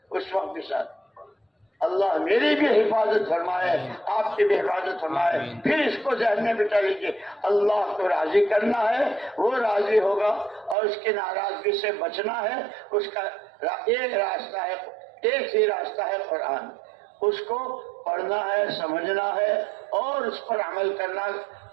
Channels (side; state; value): left; drops out; at 10.8 s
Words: اس وقت بھی ساتھ۔ اللہ میری بھی حفاظت فرمائے، آپ کی بھی حفاظت فرمائے۔ پھر اس کو ذہن میں بٹھا لیجیے، اللہ کو راضی کرنا ہے، وہ راضی ہوگا، اور اس کی ناراضگی سے بچنا ہے۔ اس کا ایک راستہ ہے، ایک ہی راستہ ہے قرآن، اس کو پڑھنا ہے، سمجھنا ہے، اور اس پر عمل کرنا،